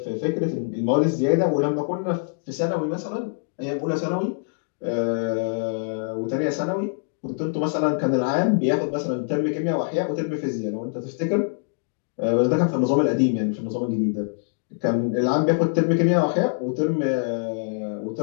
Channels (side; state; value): right; silent; digital silence